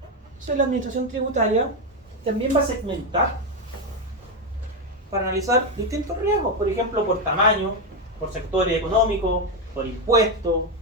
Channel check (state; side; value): normal; both; correlation 0.07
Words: Entonces la administración tributaria también va a segmentar para analizar distintos riesgos, por ejemplo, por tamaño, por sectores económicos, por impuestos,